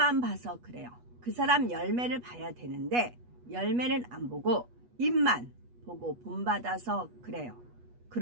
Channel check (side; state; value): left; late; 8.2 ms